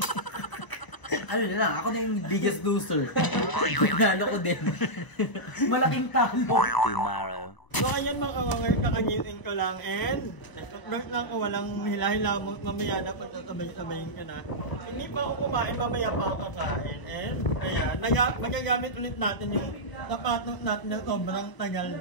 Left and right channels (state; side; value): late; right; 1.0 ms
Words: Ano na lang, ako na yung biggest loser. Nalo ko din. Malaking talo. Tomorrow. So ayan mga kawanger, kakagising ko lang and nag lang ako, walang hila-hila mo, mamaya na pagtatabay-tabayin ka na. Hindi pa ako kumain, mamaya pa ako kakain. And ayan, magagamit ulit natin yung sapatos natin na sobrang tagal